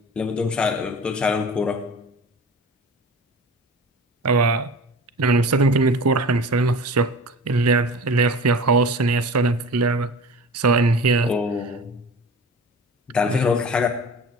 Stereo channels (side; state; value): both; normal; correlation 0.37